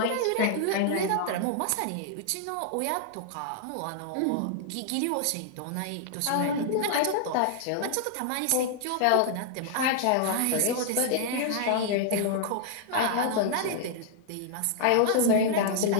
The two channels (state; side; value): different; both; correlation 0.00